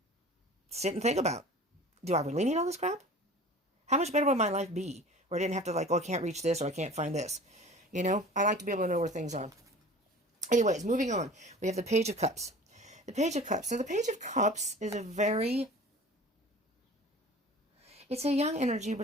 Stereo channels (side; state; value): both; normal; correlation 0.42